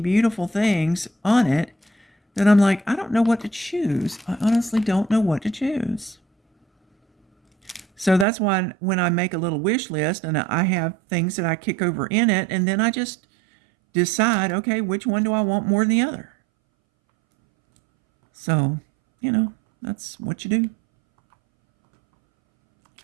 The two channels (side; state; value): left; drops out; at 8.2 s